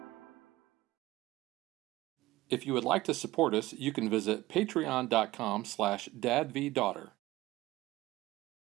If you would like to support us, you can visit patreon.com/dadvdaughter.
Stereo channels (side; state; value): left; quieter; 18.0 dB